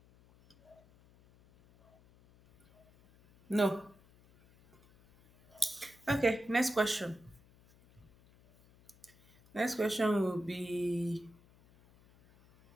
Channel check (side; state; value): left; noise; hum, 27 dB below the sound